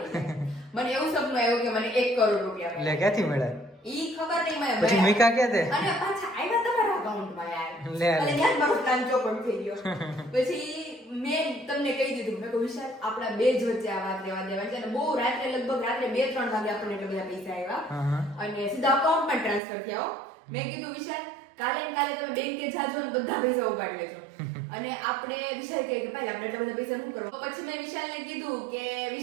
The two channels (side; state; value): left; drops out; at 19.6 s